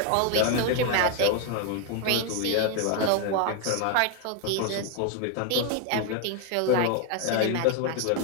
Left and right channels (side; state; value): both; different; correlation 0.01